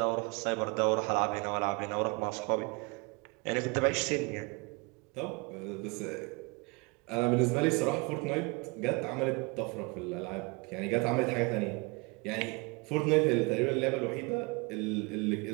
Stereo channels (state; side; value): quieter; left; 28.3 dB